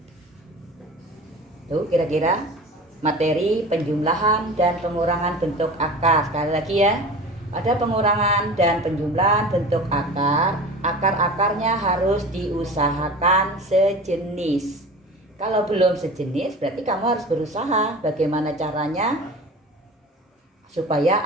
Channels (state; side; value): normal; both; correlation 0.36